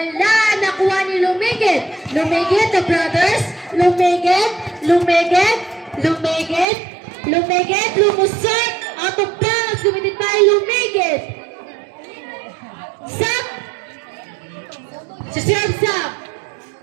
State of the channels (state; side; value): drops out; left; at 6.7 s